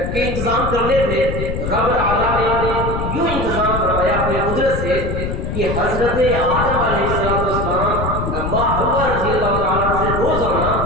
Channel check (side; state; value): left; noise; rumble, 3 dB below the sound